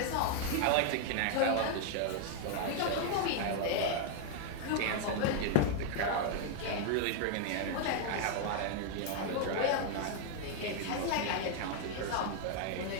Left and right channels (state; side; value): different; both; correlation 0.00